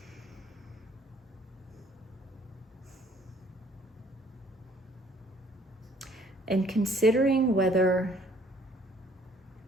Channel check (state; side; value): normal; both; correlation 0.60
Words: And considering whether